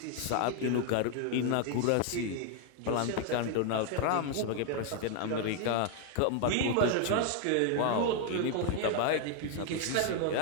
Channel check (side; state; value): both; different; correlation 0.00